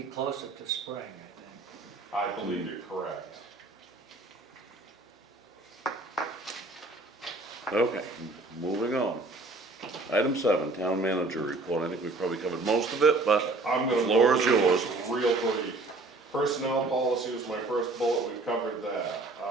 closer to spring, I think. I believe you're correct. Okay, moving on. Item 7, town manager report. I think we probably covered most of it, but I'm the gonna floor go is through yours. this real brief. Personnel policy was my first bullet, we've covered that.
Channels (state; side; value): quieter; left; 3.1 dB